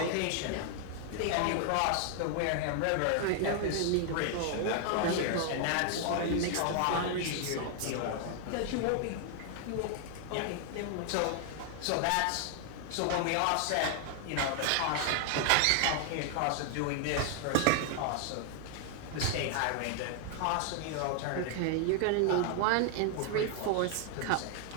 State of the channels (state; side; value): different; both; correlation 0.00